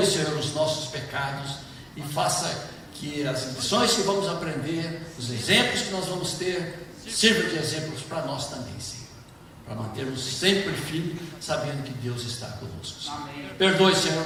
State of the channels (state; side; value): identical; both; correlation 1.00